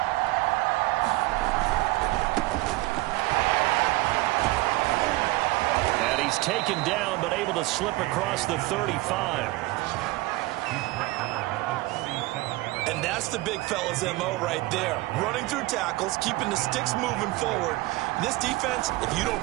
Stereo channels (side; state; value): left; quieter; 20.5 dB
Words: And he's taken down, but able to slip across the 35. And that's the big fella's MO right there. Running through tackles, keeping the sticks moving forward. This defense, if you don't